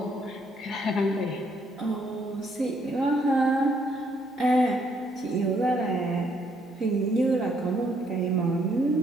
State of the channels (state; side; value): normal; both; correlation 0.70